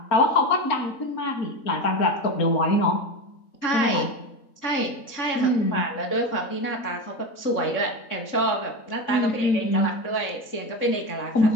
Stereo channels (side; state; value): right; late; 3.6 ms